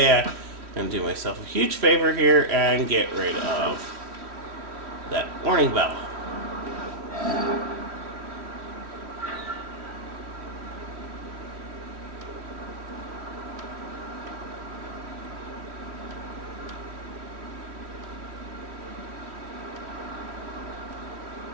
going to do myself a huge favor here and get rid of that warning bell.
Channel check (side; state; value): left; late; 3.1 ms